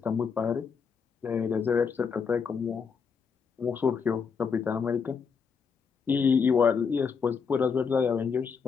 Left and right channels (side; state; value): right; quieter; 5.9 dB